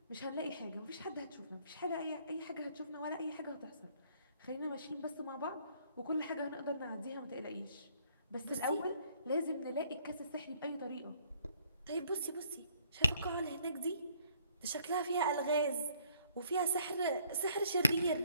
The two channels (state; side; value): inverted; both; correlation -0.63